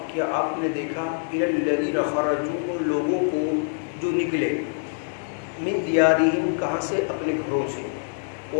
کیا آپ نے دیکھا الی الذین خرجوا، ان لوگوں کو جو نکلے من دیارہم، کہاں سے؟ اپنے گھروں سے،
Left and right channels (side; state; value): right; silent; digital silence